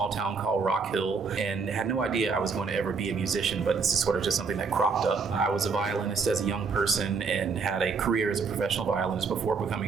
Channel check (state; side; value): quieter; left; 5.0 dB